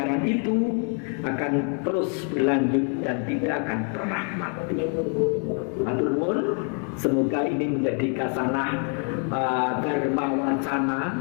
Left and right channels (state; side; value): quieter; right; 39.0 dB